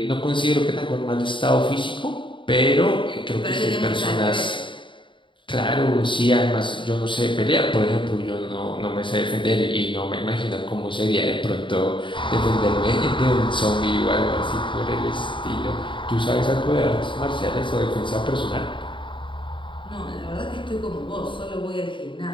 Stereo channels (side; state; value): right; late; 0.24 ms